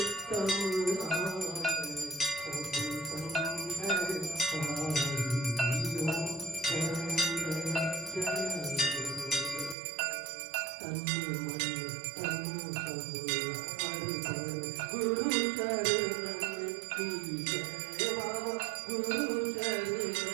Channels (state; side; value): drops out; left; at 9.8 s